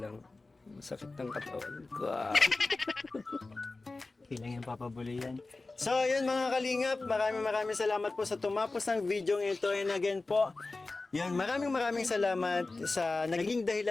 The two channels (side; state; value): right; quieter; 3.4 dB